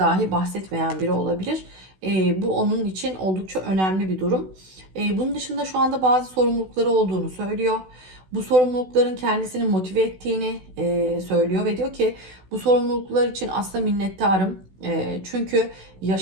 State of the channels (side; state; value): left; late; 16 ms